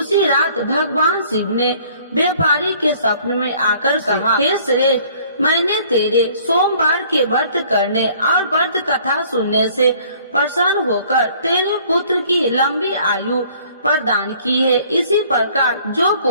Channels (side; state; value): both; inverted; correlation -0.56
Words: रात भगवान शिव ने व्यापारी के स्वप्न में आकर कहा, हे श्रेष्ठ, मैंने तेरे सोमवार के व्रत करने और व्रत कथा सुनने से प्रसन्न होकर तेरे पुत्र की लंबी आयु प्रदान की है। इसी प्रकार जो